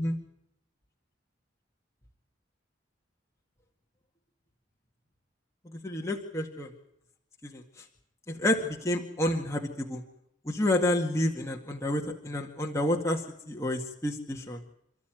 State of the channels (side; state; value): both; normal; correlation 0.63